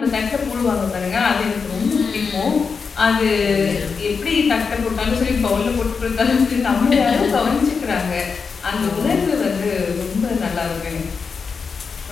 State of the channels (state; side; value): quieter; right; 5.4 dB